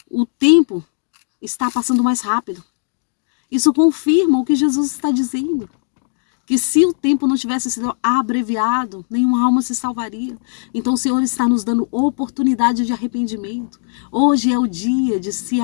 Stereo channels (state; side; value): silent; right; digital silence